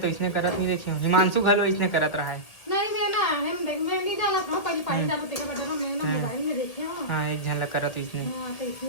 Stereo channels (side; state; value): right; late; 1.9 ms